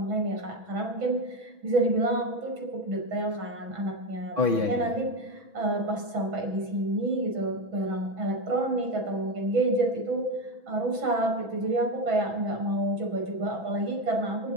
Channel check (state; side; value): late; left; 6.1 ms